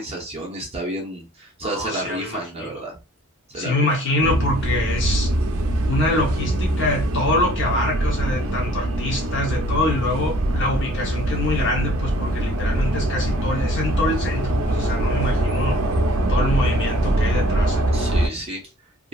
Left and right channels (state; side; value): normal; both; correlation 0.55